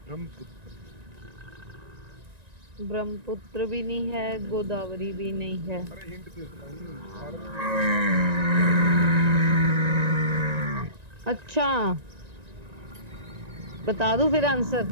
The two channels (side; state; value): left; late; 1.9 ms